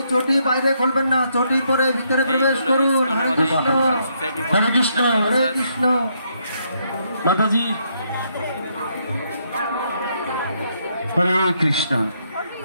চটি বাইরে খুলবেন না, চটি পরে ভিতরে প্রবেশ করুন। হরে কৃষ্ণ হরে কৃষ্ণ হরে কৃষ্ণ। মাতাজি হরে কৃষ্ণ।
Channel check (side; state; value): both; inverted; correlation -0.75